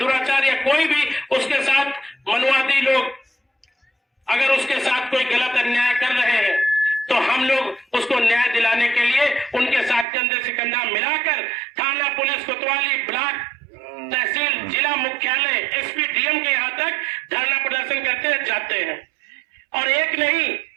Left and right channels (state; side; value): drops out; left; at 10.1 s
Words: या कोई भी उसके साथ मनुवादी लोग अगर उसके साथ कोई गलत अन्याय कर रहे हैं, तो हम लोग उसको न्याय दिलाने के लिए उनके साथ कंधे से कंधा मिलाकर थाना, पुलिस, कोतवाली, ब्लॉक, तहसील, जिला मुख्यालय, SP, DM के यहाँ तक धरना प्रदर्शन करते जाते हैं। और एक नहीं,